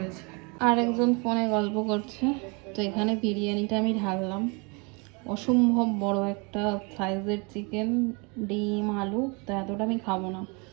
আর একজন ফোনে গল্প করছে, তো এখানে বিরিয়ানিটা আমি ঢাললাম। অসম্ভব বড় একটা সাইজের চিকেন, ডিম, আলু, তো এতটা আমি খাবো না।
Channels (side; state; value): left; quieter; 30.9 dB